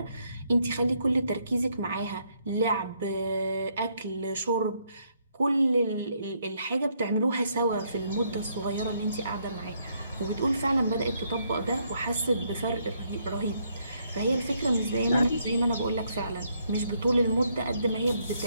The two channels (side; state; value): both; inverted; correlation -0.73